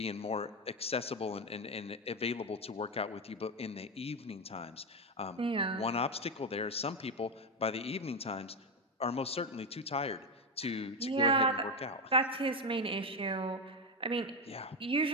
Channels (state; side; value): normal; both; correlation 0.12